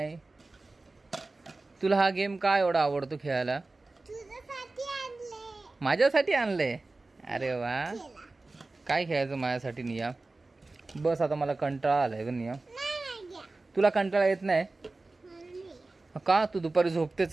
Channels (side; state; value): left; quieter; 3.3 dB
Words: तुला हा गेम का एवढा आवडतो खेळायला? माझ्यासाठी आणलंय? अरे वा. काय खेळायचं माझ्यासाठी निया? बस आता मला कंटाळा आलाय ग निया. तुला कंटाळा येत नाही का? तू दुपारी झोपते